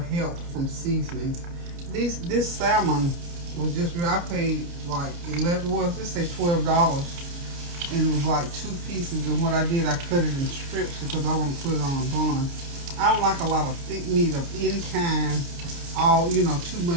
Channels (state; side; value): late; left; 29 ms